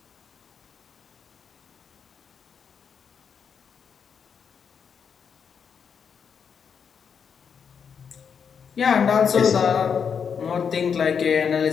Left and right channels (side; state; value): right; quieter; 6.8 dB